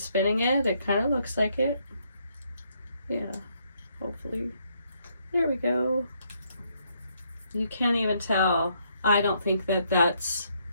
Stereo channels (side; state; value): both; inverted; correlation -0.73